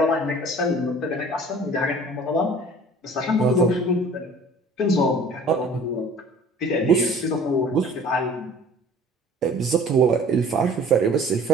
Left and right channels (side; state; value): both; normal; correlation 0.48